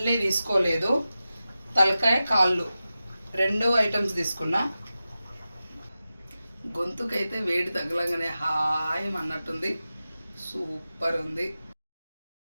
తీసుకోలేదు, తలకాయ కాళ్ళు 2 ఐటమ్స్ తీసుకున్నా. గొంతుకైతే వేడి తగలంగానే హాయ్ అన్నట్టుంది, సూపర్ ఉంది.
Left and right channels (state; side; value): inverted; both; correlation -0.94